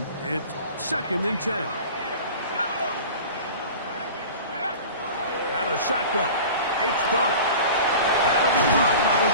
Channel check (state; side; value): inverted; both; correlation -0.38